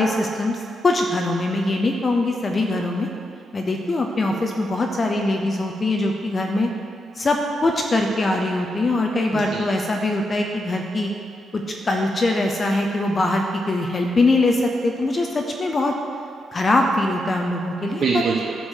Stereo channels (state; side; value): normal; both; correlation 0.84